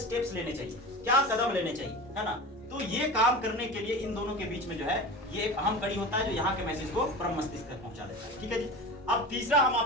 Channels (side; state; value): both; normal; correlation 0.31